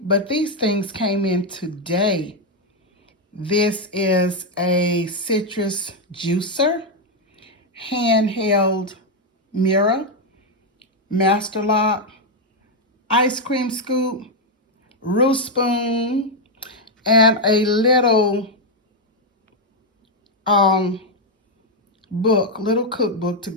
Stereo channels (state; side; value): normal; both; correlation 0.02